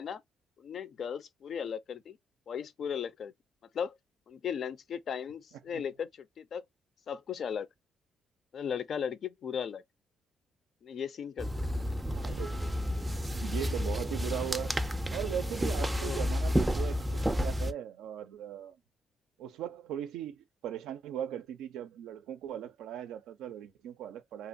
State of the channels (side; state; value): both; normal; correlation 0.80